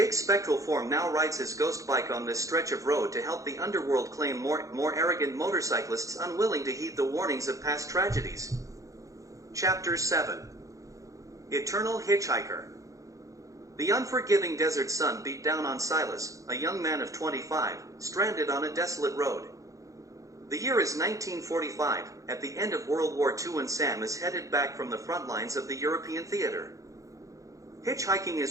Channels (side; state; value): left; late; 0.16 ms